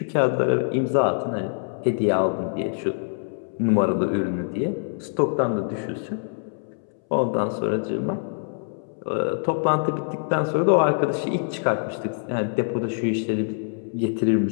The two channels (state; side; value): silent; right; 62 dB below the other